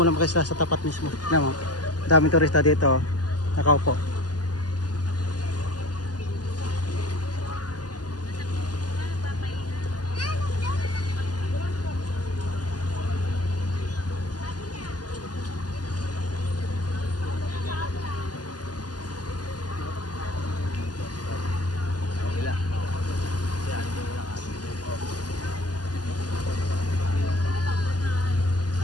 ng Makisla sa tapat mismo. Alam mo, daming turista dito, nakaupo.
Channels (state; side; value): late; right; 0.69 ms